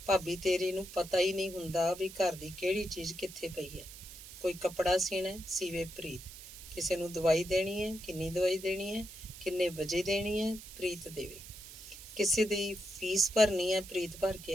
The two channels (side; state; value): right; noise; hiss, 14 dB below the sound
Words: ਭਾਬੀ ਤੇਰੀ ਨੂੰ ਪਤਾ ਹੀ ਨਹੀਂ ਹੁੰਦਾ ਵੀ ਘਰ ਦੀ ਕਿਹੜੀ ਚੀਜ਼ ਕਿੱਥੇ ਪਈ ਹੈ। ਕੋਈ ਕੱਪੜਾ ਸੀਣਾ, ਸੀਵੇ ਪ੍ਰੀਤ। ਕਿਸੇ ਨੂੰ ਦਵਾਈ ਦੇਣੀ ਹੈ, ਕਿੰਨੀ ਦਵਾਈ ਦੇਣੀ ਹੈ, ਕਿੰਨੇ ਵਜੇ ਦੇਣੀ ਹੈ, ਪ੍ਰੀਤ ਦੇਵੇ। ਕਿਸੇ ਦੀ ਫੀਸ ਭਰਨੀ ਹੈ, ਪ੍ਰੀਤ ਭਰ